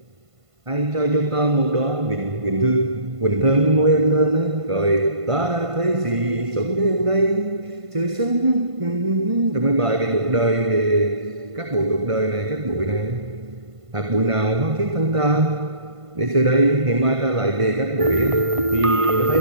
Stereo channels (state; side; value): late; left; 1.5 ms